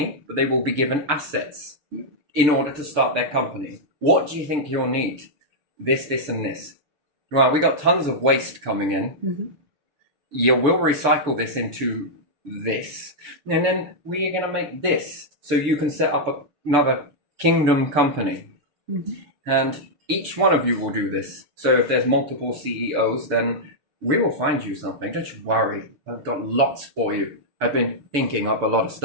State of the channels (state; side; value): late; left; 6.8 ms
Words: but they will be given assets in order to start their company. What do you think you'll need? This, and this. Well, we got tons of waste coming in. You will recycle this into this. And then we are going to make this. So you can set up another kingdom company. And each one of you will do this. So if there's multiple CEOs, then we will find you something. Don't you worry. I've got lots for you. I've been thinking up a lot of